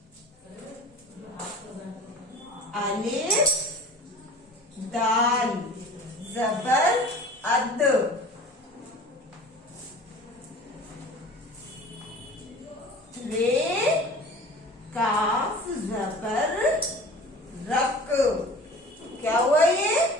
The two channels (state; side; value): normal; both; correlation 0.41